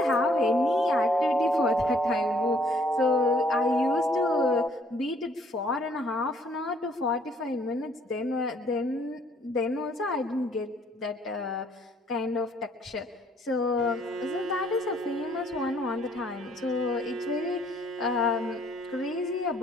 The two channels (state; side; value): normal; both; correlation 0.63